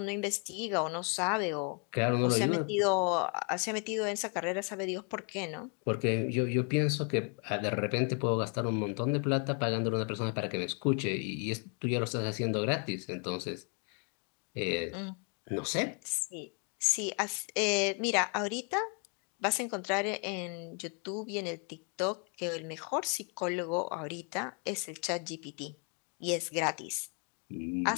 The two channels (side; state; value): right; quieter; 38.0 dB